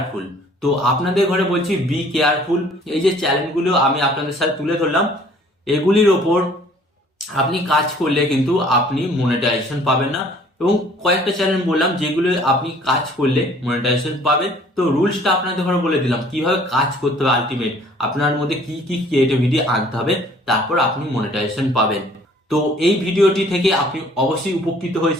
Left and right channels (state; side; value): normal; both; correlation 0.55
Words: তো আপনাদের ঘরে বলছি, বি কেয়ারফুল। এই যে চ্যানেলগুলো আমি আপনাদের সাথে তুলে ধরলাম, এগুলির ওপর আপনি কাজ করলে কিন্তু আপনি মনিটাইজেশন পাবেন না। এবং কয়েকটা চ্যানেল বললাম যেগুলো আপনি কাজ করলে মনিটাইজেশন পাবেন। তো রুলসটা আপনাদের ঘরে বলে দিলাম, কিভাবে কাজ করতে হবে, আলটিমেট আপনার মধ্যে কি কি ক্রিয়েটিভিটি আনতে হবে, তারপর আপনি মনিটাইজেশন পাবেন। তো এই ভিডিওটি থেকে আপনি অবশ্যই উপকৃত